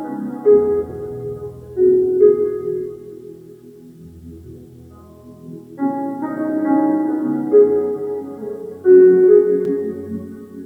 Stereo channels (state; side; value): identical; both; correlation 1.00